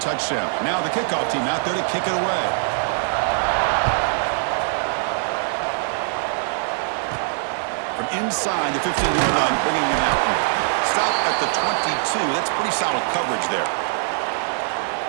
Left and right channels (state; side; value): silent; left; 63 dB below the other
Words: touchdown. Now the kickoff team out there to kick it away. From inside the 15-yard line, bringing it out. Stop at the 22. That's pretty solid coverage there.